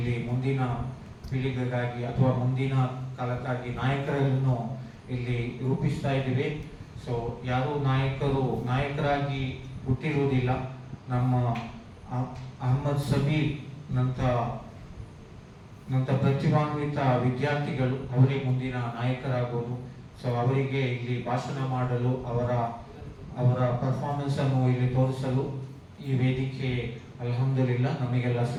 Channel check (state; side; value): identical; both; correlation 1.00